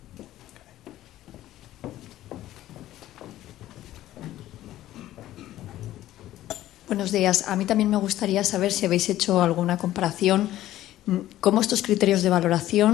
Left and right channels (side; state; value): right; quieter; 14.1 dB